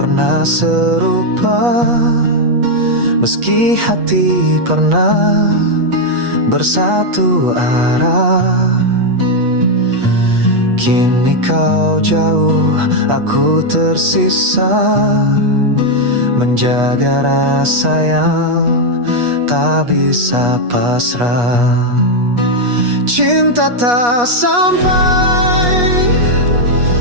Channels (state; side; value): late; left; 8.3 ms